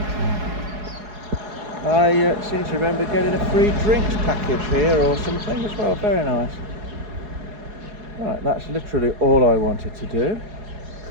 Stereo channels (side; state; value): left; late; 4.8 ms